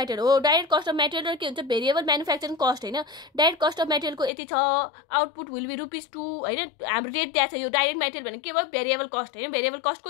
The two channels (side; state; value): right; drops out; at 4.3 s